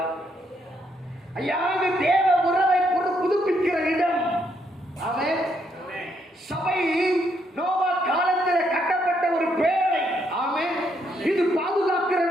ஐயா, இது தேவ உறவை புதுப்பிக்கிற இடம். ஆமென். சபை நோவா காலத்தில் கட்டப்பட்ட ஒரு பேழை. ஆமென். இது பாதுகாக்கிற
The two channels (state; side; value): normal; both; correlation 0.75